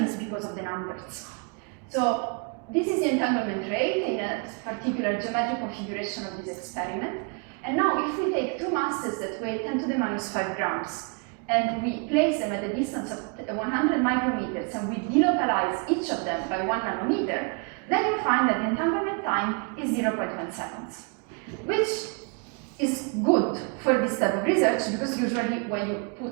is because of the numbers. So, this is the entanglement rate in a particular geometric configuration of this experiment. And now, if we take two masses that weigh 10 to the minus 5 grams, and we place them at a distance of 100 micrometers, and we delocalize each of them by 1 nanometer, then you find that the entanglement time is 0.1 seconds, which is good for this type of research, because usually when you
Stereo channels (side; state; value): left; quieter; 34.5 dB